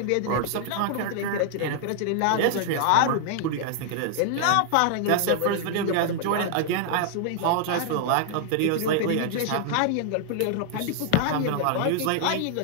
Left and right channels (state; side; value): different; both; correlation -0.01